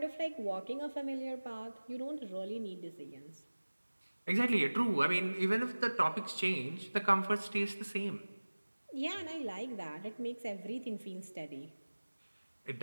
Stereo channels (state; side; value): inverted; both; correlation -1.00